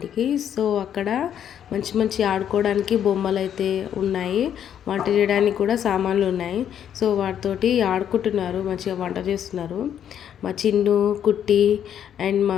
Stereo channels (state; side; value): quieter; right; 9.5 dB